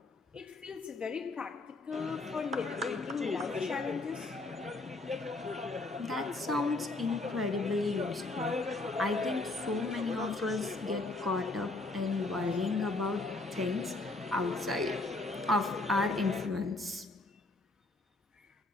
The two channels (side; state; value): right; quieter; 3.1 dB